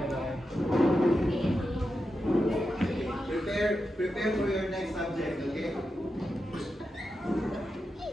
Prepare for your next subject, okay?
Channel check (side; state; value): both; normal; correlation 0.89